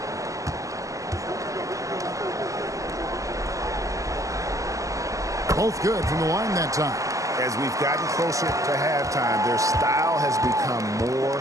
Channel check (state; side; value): late; left; 0.16 ms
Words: Both good from the line that time. As we've gotten closer to halftime, their style has become